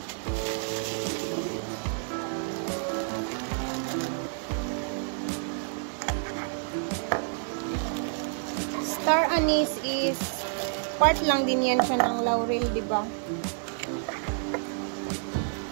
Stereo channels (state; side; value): silent; left; 59 dB below the other